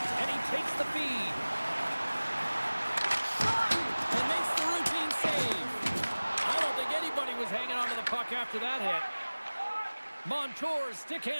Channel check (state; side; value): inverted; both; correlation -1.00